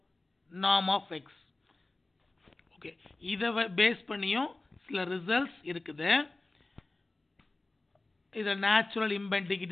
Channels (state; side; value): quieter; right; 3.0 dB